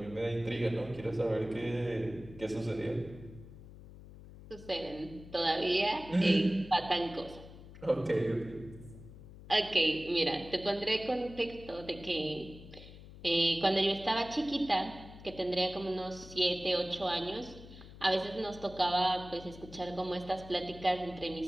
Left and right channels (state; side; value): noise; left; hum, 17 dB below the sound